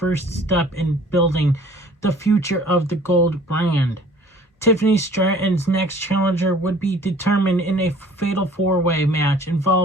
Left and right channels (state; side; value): normal; both; correlation 0.52